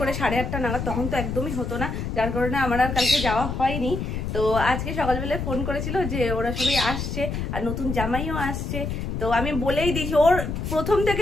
8:30 নাগাদ, তখন তো একদমই হতো না, যার কারণে আমার আর কালকে যাওয়া হয়নি। তো আজকে সকালবেলায় ফোন করেছিল যে ওরা সবাই আসছে আর নতুন জামাইও আসছে। তো আমি বলেই দিয়েছি, ওর প্রথম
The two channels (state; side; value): noise; left; rumble, 4 dB below the sound